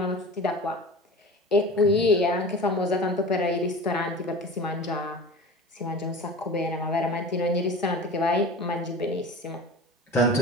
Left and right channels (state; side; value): normal; both; correlation 0.34